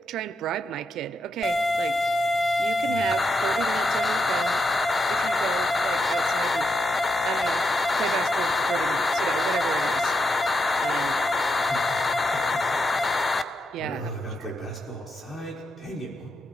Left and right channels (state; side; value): normal; both; correlation 0.83